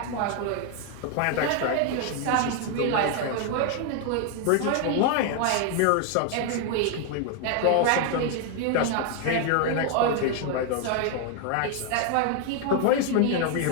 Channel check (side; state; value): both; different; correlation 0.00